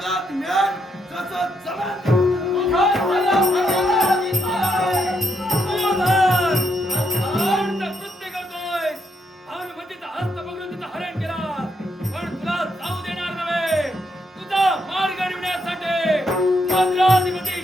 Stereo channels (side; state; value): both; normal; correlation 0.78